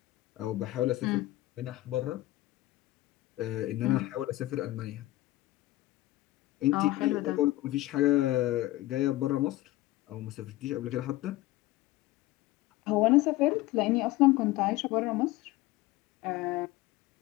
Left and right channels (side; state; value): right; quieter; 17.4 dB